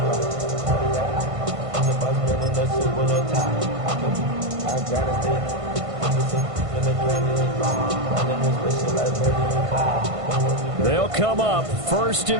They'll come up 1st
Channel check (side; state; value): left; late; 1.5 ms